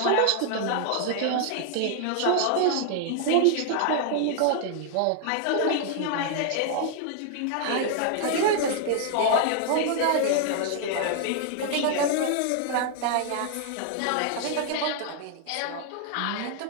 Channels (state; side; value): different; both; correlation 0.00